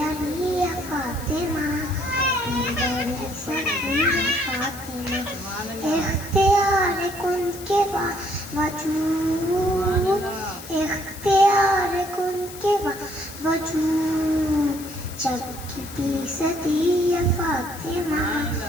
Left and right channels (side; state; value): left; noise; hiss, 15 dB below the sound